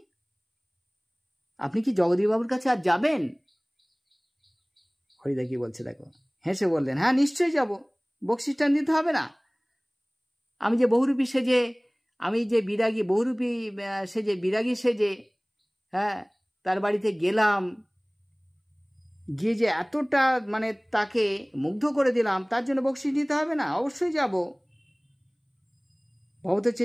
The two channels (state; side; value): identical; both; correlation 1.00